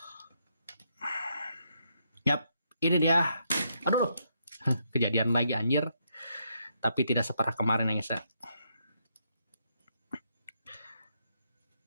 Yap, ini dia. Aduh, kejadian lagi anjir. Tapi tidak separah kemarin ya guys ya.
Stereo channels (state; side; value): inverted; both; correlation -0.77